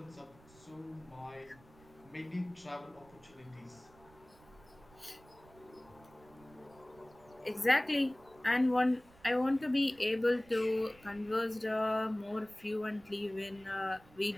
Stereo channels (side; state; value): right; noise; rumble, 25 dB below the sound